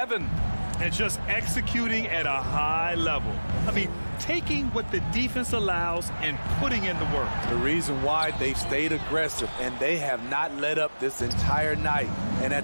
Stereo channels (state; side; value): inverted; both; correlation -1.00